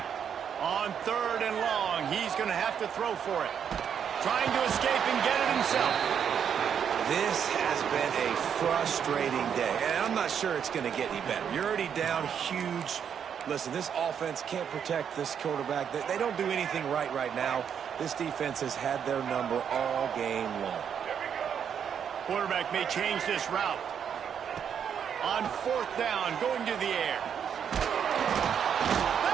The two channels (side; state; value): left; quieter; 8.0 dB